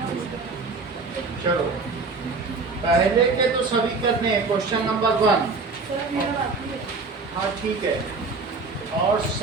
चलो पहले के तो सभी करने हैं, क्वेश्चन नंबर 1। हाँ ठीक है। और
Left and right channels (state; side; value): quieter; left; 4.0 dB